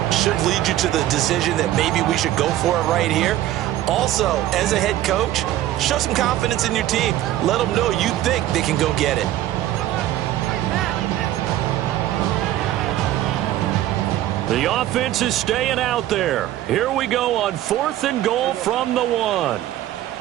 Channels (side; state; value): left; quieter; 13.7 dB